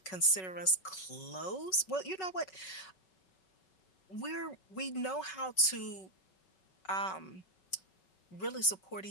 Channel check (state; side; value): late; right; 5.3 ms